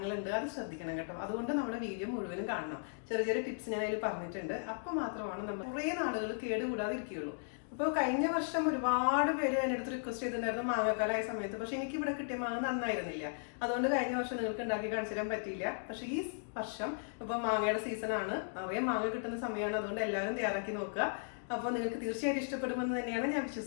അത് ശ്രദ്ധിക്കണം കേട്ടോ. അതുകൊണ്ട് നമ്മുടെ വീഡിയോ മുഴുവനും കാണണം. ചെറിയ ചെറിയ ടിപ്സ് ഞാൻ അതിൽ പറഞ്ഞിട്ടുണ്ട്. അപ്പോൾ മാത്രമാണ് നമ്മൾ കുറേ നാളുകൾ കേടുകൂടാതെ ഇരിക്കുകയുള്ളൂ. അപ്പോൾ കഴിഞ്ഞ വർഷം ഒരുപാട് പേര് എൻ്റെ അടുത്ത് റിക്വസ്റ്റ് ചെയ്തിട്ടുണ്ടായിരുന്നു മാങ്ങക്കാലായ സമയത്ത്. പക്ഷെ എനിക്ക് ഇവിടെ കിട്ടിയ മാങ്ങ നന്നായിരുന്നില്ല. അതുകൊണ്ട് കഴിഞ്ഞ വർഷം നിങ്ങൾക്ക് ഉണ്ടാക്കി കാണിച്ചു തരാൻ പറ്റിയില്ല. പക്ഷെ ഈ വർഷം ഇപ്പോൾ മാങ്ങയുടെ സീസണാണ്, നിറയെ മാങ്ങ കിട്ടുന്ന സമയമാണ്. അതുകൊണ്ട് എല്ലാവരും തയ്യാറാക്കി നോക്കുക. അപ്പോൾ നിങ്ങൾക്ക് തീർച്ചയായിട്ടും ഇഷ്ടപ്പെടുമെന്ന് തന്നെയാണ് ഞാൻ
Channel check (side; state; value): right; silent; digital silence